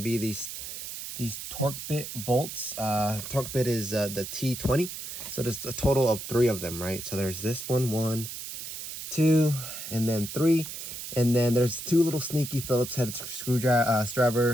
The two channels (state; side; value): noise; right; hiss, 8 dB below the sound